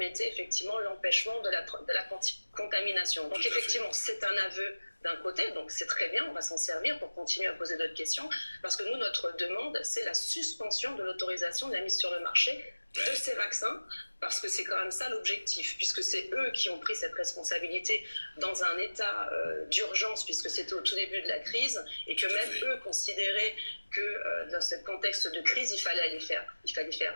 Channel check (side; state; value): both; inverted; correlation -1.00